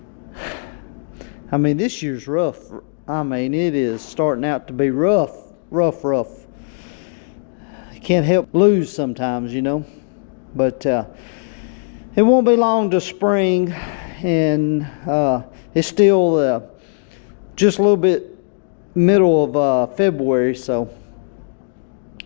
I mean, this year's rough. I mean, it is starting out to be rough. You can't help lose sometimes, you know. But it won't be long to spring, and it's still just a little bit middle of February, so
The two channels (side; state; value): right; silent; digital silence